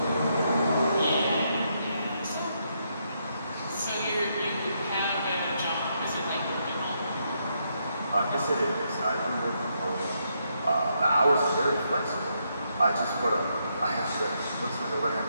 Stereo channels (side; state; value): both; inverted; correlation -0.78